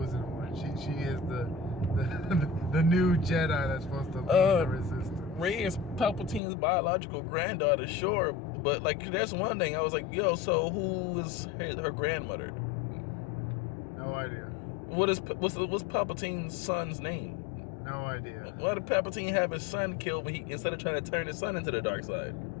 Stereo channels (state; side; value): drops out; right; at 6.4 s